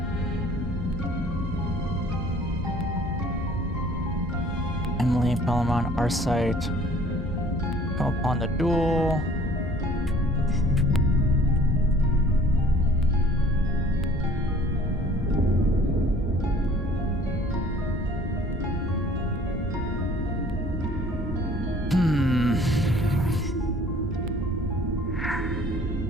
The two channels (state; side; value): normal; both; correlation 0.53